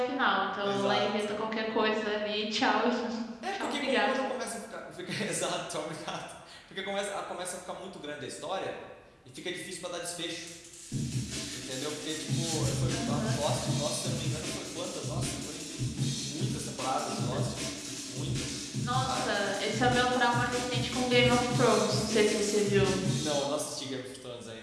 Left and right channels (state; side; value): identical; both; correlation 1.00